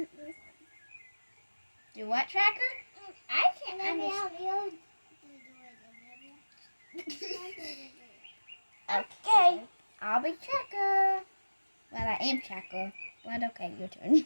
Do what, Tracker? I can't understand. Okay, I'll be Tracker. Well, I am Tracker, but okay, your turn.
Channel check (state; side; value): inverted; both; correlation -1.00